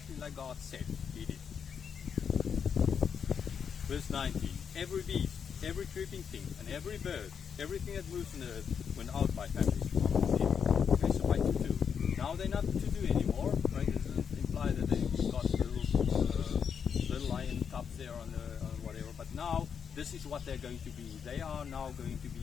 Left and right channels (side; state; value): right; quieter; 7.1 dB